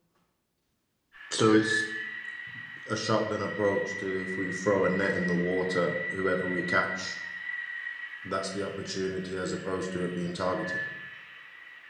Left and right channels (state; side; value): identical; both; correlation 1.00